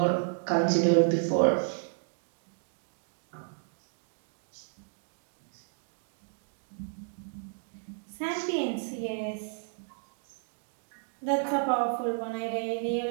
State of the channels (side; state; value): left; silent; digital silence